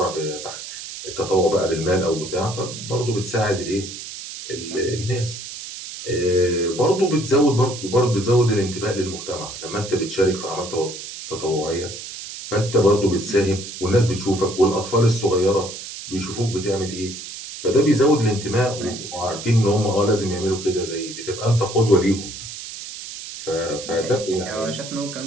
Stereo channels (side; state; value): right; noise; hiss, 10 dB below the sound